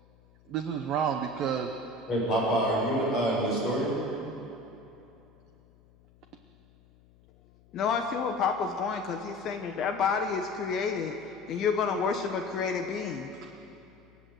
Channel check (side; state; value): left; noise; hum, 28 dB below the sound